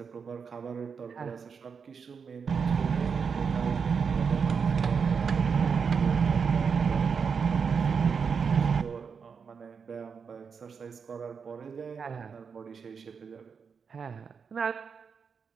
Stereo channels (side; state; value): left; quieter; 6.0 dB